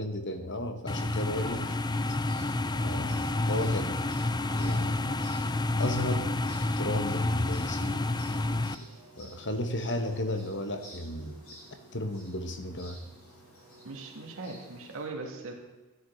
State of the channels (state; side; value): normal; both; correlation 0.59